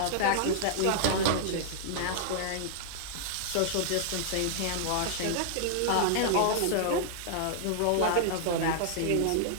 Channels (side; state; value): both; different; correlation -0.01